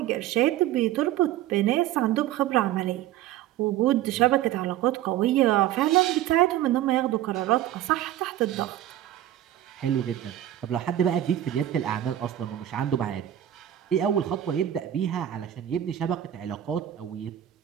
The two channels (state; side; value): quieter; left; 12.5 dB